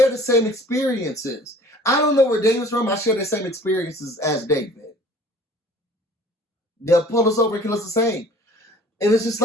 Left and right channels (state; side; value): normal; both; correlation 0.51